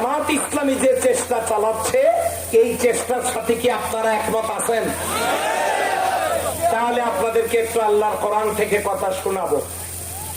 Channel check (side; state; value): both; identical; correlation 1.00